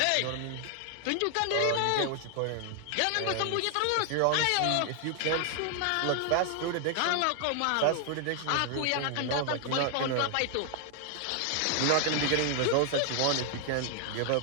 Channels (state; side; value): different; both; correlation 0.00